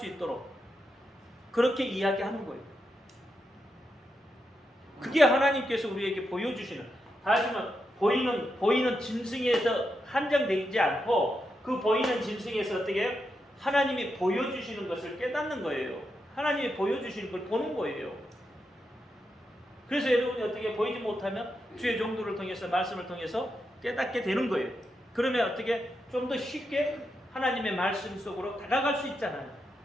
있도록 그렇게 이야기하는 거예요. 그게 하나님께서 우리에게 보여주시는 하지만 보이는 짐승에서 한정되지 않고 그 보이는 짐승에서 어떻게 해요? 하나님이 보여주시는 것을 깨닫는 거예요. 하나님이 보여주시는 걸 보는 거예요. 그래서 여러분이 어떻게 보이지 못하면 주의 종도를 통해서 말씀을 통해서 깨닫게 되는 거예요. 그러면 어떻게 좀 더 쉽게 하나님의 말씀 속으로 다가갈 수 있잖아요.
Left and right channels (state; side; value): normal; both; correlation 0.85